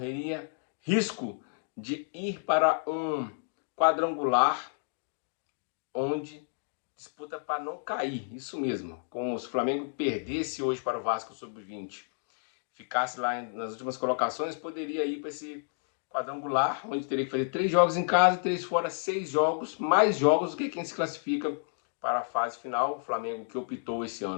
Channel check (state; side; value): silent; right; digital silence